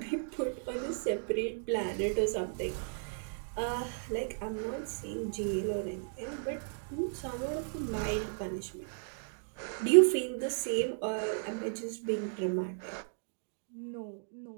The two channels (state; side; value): silent; left; digital silence